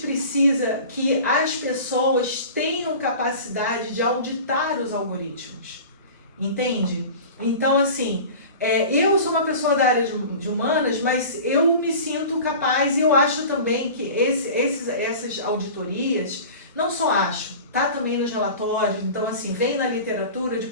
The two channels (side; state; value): both; inverted; correlation -0.37